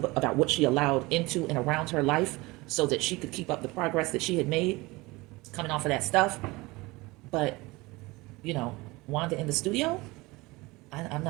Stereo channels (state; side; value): quieter; left; 22.4 dB